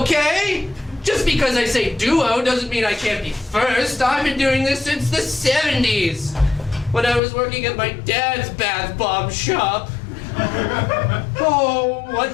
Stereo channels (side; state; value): right; drops out; at 7.2 s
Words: Just because I say duo doesn't mean I can't be first. I've been doing this since the 70s, when I was working at my dad's bath bomb shop. Oh,